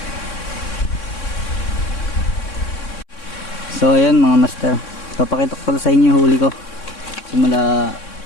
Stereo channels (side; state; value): right; late; 3.6 ms